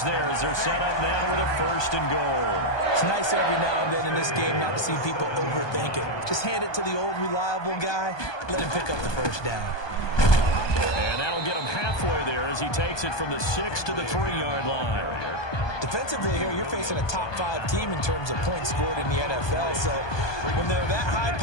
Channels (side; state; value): right; late; 1.2 ms